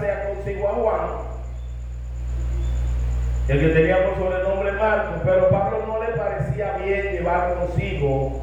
consigo a Juan, el que tenía por sobrenombre Marcos, pero Pablo no le parecía bien llevar consigo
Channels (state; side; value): identical; both; correlation 1.00